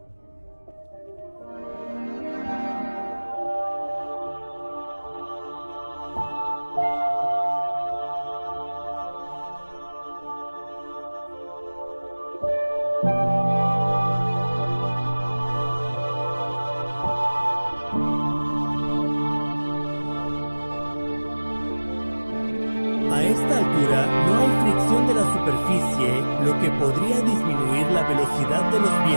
A esta altura no hay fricción de la superficie, lo que podría disminuir la velocidad de los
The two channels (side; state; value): both; inverted; correlation -1.00